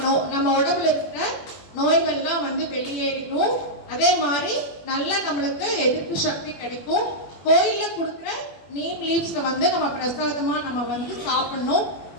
உடம்புல இருக்கிற நோய்கள்லாம் வந்து வெளியேறிடும். அதே மாதிரி நல்லா நம்மளுக்கு எதிர்ப்பு சக்தி கிடைக்கும். கோயில்ல கொடுக்குற நீம் லீவ்ஸ் வந்து நம்ம பிரசாதமா நம்ம வந்து சாப்பிடணும்.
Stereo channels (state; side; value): late; right; 21 ms